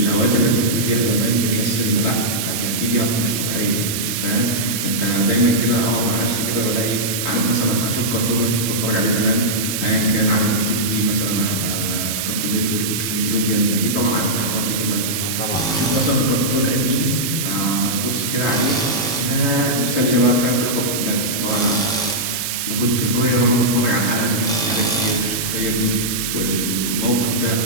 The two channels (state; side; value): noise; right; hiss, 2 dB below the sound